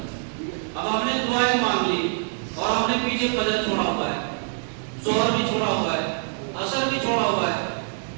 अब हमने दुआएं मांग ली और हमने पीछे फजर छोड़ा हुआ है, जोहर भी छोड़ा हुआ है, असर भी छोड़ा हुआ है।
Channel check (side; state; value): left; silent; 62 dB below the other